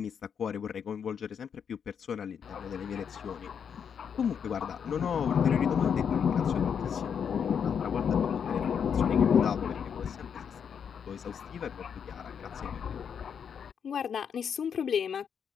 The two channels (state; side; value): quieter; right; 7.4 dB